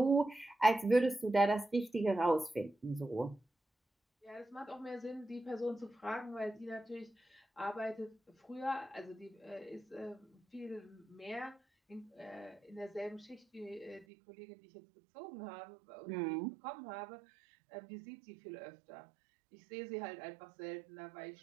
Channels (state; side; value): drops out; left; at 14.1 s